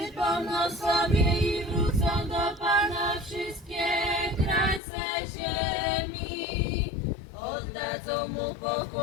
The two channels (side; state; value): right; drops out; at 4.8 s